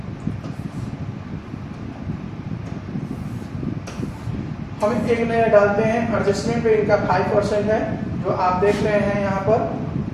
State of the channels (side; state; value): both; identical; correlation 1.00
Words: हम एक नजर डालते हैं एडजस्टमेंट पे, इनका 5% है जो आप देख रहे हैं यहाँ पर,